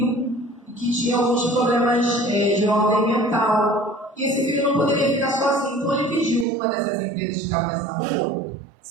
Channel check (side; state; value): left; drops out; at 6.5 s